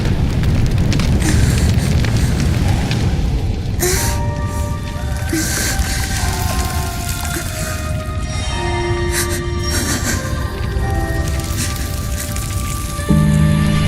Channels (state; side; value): identical; both; correlation 1.00